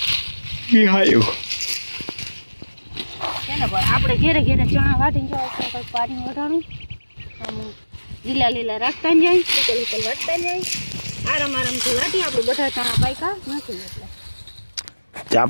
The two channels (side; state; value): both; inverted; correlation -1.00